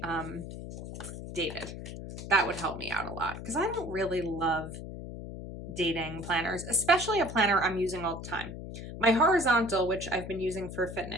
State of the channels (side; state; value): left; noise; hum, 9 dB below the sound